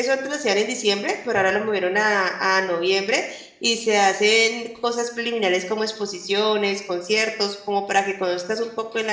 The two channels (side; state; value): both; identical; correlation 1.00